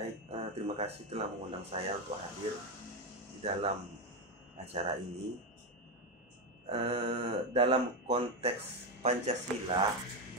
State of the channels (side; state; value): both; normal; correlation 0.10